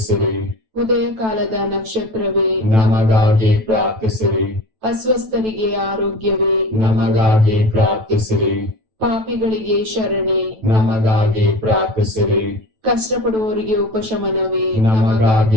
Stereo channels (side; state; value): left; late; 9.1 ms